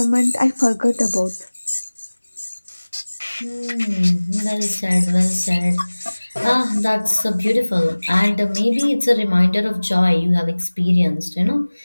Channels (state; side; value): inverted; both; correlation -1.00